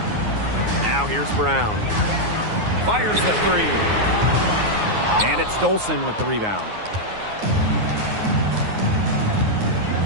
Now here's Brown. Fires the 3. And it's Dolson with the rebound.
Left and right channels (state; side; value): late; left; 9.5 ms